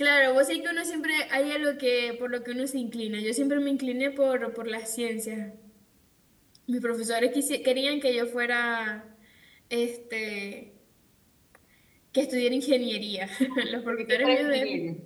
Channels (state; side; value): identical; both; correlation 1.00